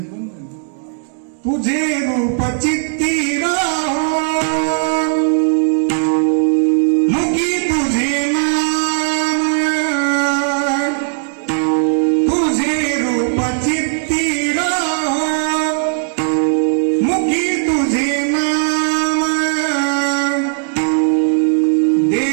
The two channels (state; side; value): silent; left; digital silence